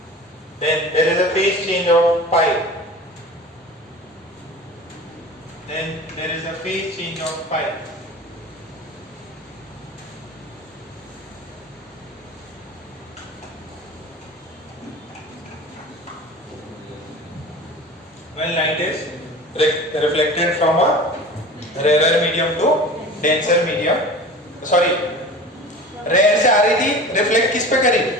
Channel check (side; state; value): both; normal; correlation 0.37